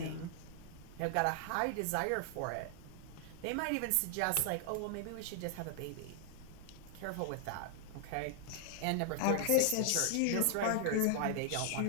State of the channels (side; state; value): both; different; correlation 0.00